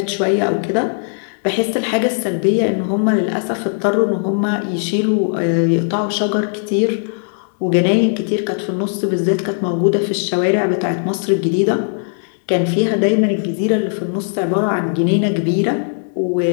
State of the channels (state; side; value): silent; right; digital silence